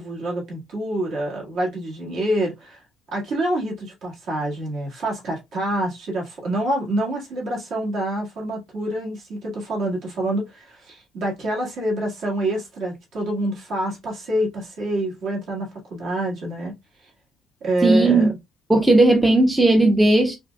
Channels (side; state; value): both; normal; correlation 0.81